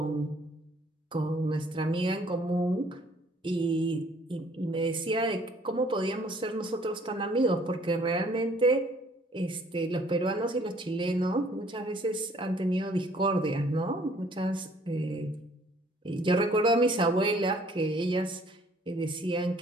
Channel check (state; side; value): normal; both; correlation 0.59